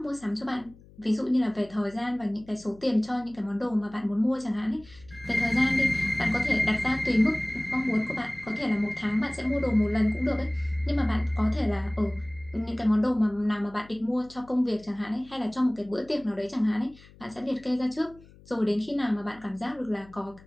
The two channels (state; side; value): noise; left; hum, 23 dB below the sound